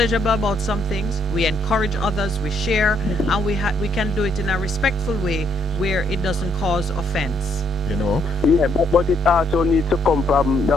about some things, we encourage others, we share, and we can do it in a respectful way where it doesn't cause offense. Yeah, but it also needs to come from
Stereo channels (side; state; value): both; normal; correlation 0.71